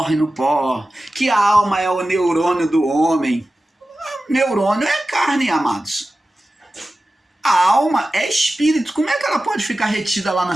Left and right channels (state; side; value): normal; both; correlation 0.95